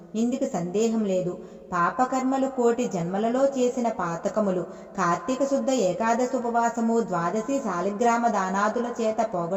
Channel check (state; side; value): identical; both; correlation 1.00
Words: ఇందుకు సందేహం లేదు. పాపకర్మలు 1,000,000 జన్మలలో చేసిన పాతకములు కార్తీక శుద్ధ ఏకాదశి ఉపవాసము, ద్వాదశి శాలిగ్రామ దానాదుల చేత